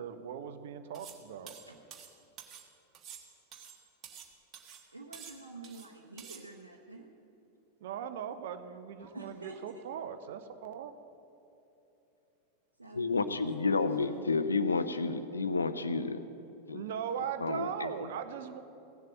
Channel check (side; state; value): both; inverted; correlation -0.61